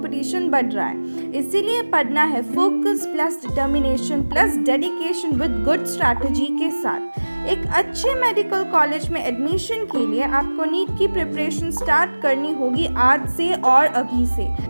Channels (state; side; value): inverted; both; correlation -1.00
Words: बढ़ रहा है. इसीलिए पढ़ना है focus plus determination plus dedication with good strategy के साथ. एक अच्छे मेडिकल कॉलेज में एडमिशन के लिए आपको नीट की प्रिपरेशन स्टार्ट करनी होगी आज से और अभी से.